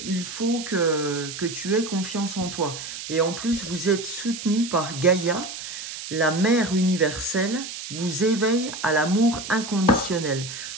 il faut que tu aies confiance en toi. Et en plus, vous êtes soutenu par Gaïa, la mère universelle, vous éveille à l'amour inconditionnel.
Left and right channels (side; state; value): right; noise; hiss, 9 dB below the sound